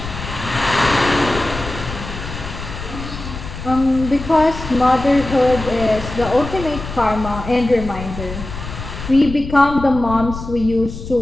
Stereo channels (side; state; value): left; noise; rumble, 9 dB below the sound